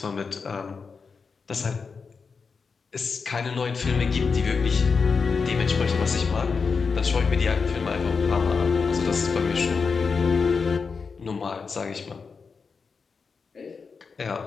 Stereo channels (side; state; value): right; quieter; 5.2 dB